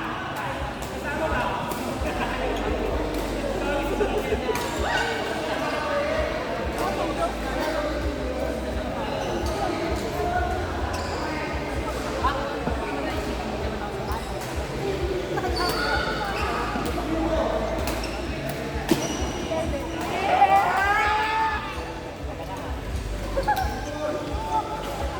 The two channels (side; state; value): both; identical; correlation 1.00